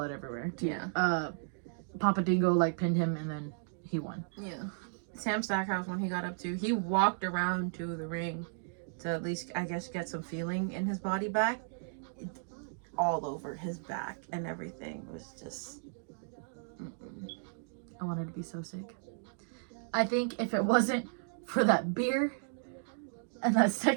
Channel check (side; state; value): left; silent; digital silence